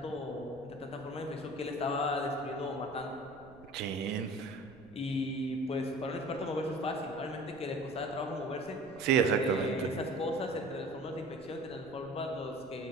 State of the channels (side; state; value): right; noise; rumble, 23 dB below the sound